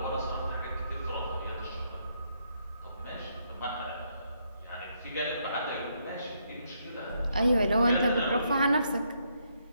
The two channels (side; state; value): both; inverted; correlation -0.75